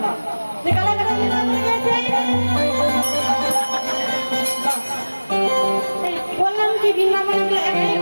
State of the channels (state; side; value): inverted; both; correlation -1.00